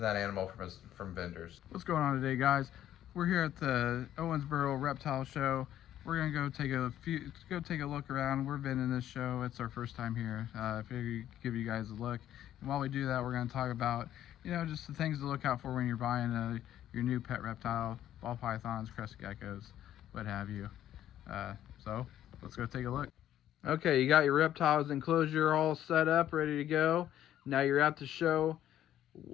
animal from vendors. What's going on today, guys? We're here at the Owensboro Reptile Show. We're gonna go take a look around. We've been in this show. It's our first time here. I figured give you guys a look. And while we do that, we're gonna talk about, just the things to look out for when you're buying your new pet reptile, ball pythons, crested geckos, what have you. So let's go take a look. Okay, you got your reptiles enclosure all set up, ready to go. Now you're at the show,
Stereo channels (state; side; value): quieter; right; 11.8 dB